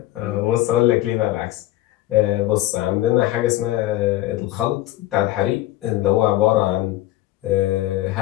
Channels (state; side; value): quieter; right; 15.7 dB